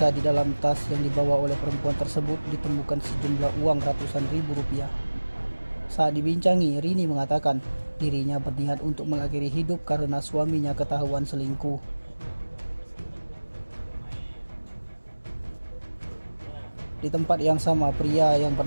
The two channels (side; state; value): both; inverted; correlation -1.00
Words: di dalam tas yang dibawa oleh perempuan tersebut ditemukan sejumlah uang ratusan ribu rupiah. Saat dibincangi, Rini mengatakan dirinya berniat untuk mengakhiri hidup karena suaminya ketahuan selingkuh. Di tempat yang sama, pria yang